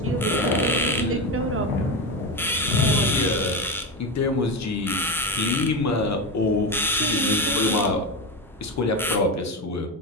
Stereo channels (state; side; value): normal; both; correlation 0.17